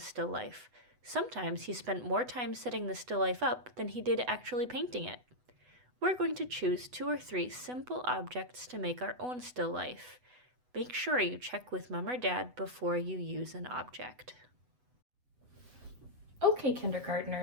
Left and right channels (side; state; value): left; late; 8.0 ms